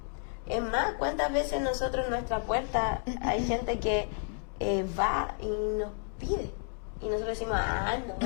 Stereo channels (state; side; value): silent; right; 57 dB below the other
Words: Es más, ¿cuántas veces nosotros en nuestra puerta hay gente que va y nos pide? Y nosotros decimos, no,